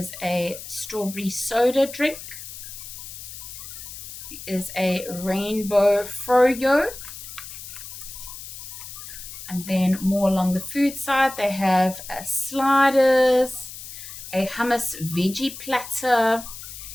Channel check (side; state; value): left; noise; hiss, 12 dB below the sound